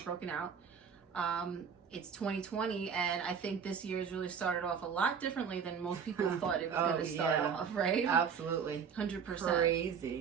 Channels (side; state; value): left; quieter; 6.8 dB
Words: broken out. It's 2020, and I think this year has really started off a lot differently than most people thought it was going to start off, right? Absolutely. 100%.